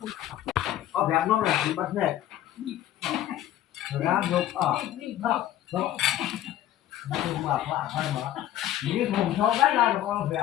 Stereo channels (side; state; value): right; quieter; 12.6 dB